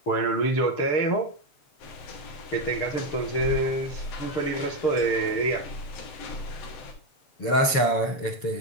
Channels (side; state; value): right; late; 7.0 ms